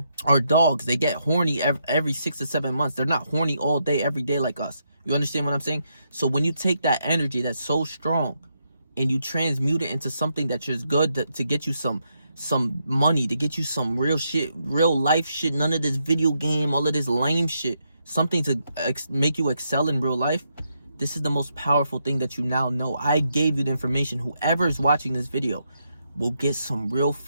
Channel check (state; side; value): inverted; both; correlation -0.80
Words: Our dogs, they get horny every 6 to 7 months. They're not horny all day, every day like us. You understand what I'm saying? So when you take that energy that's so strong and you transmute it into something that's just good to get you some money, to get you some real shit, real life shit, none of this video game, all of this lame shit, something to make you excel in real life, This is the most powerful thing that you now know. I gave you the information. Whoever is watching this video will get some real